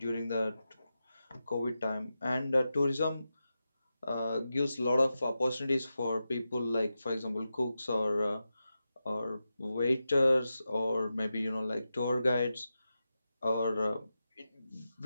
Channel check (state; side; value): inverted; both; correlation -0.91